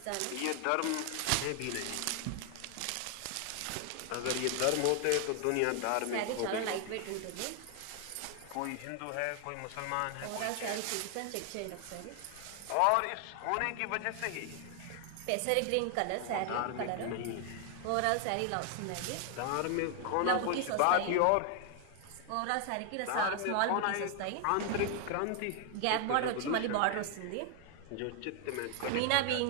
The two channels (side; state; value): both; different; correlation 0.00